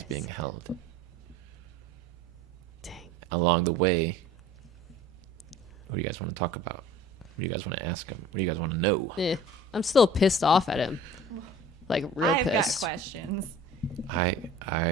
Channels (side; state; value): both; normal; correlation 0.45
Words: being held. Dang. Along the way, what do you guys want to talk about? What do you guys want to ask him? What do you guys want to know? I'm still pissed off at him. Like, real I've got pissed. questions.